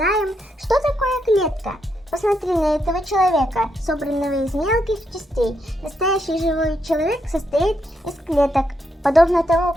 что такое клетка. Посмотри на этого человека, собранного из мелких частей. Настоящий живой человек состоит из клеток, подобно тому,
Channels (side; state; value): both; normal; correlation 0.80